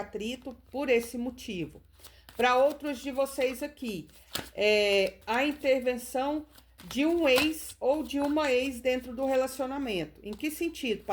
por esse motivo. Para outros de vocês aqui, a intervenção de um ex ou de uma ex dentro do relacionamento. Em que sentido,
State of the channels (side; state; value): both; identical; correlation 1.00